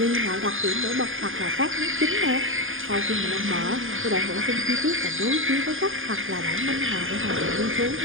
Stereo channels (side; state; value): left; late; 0.59 ms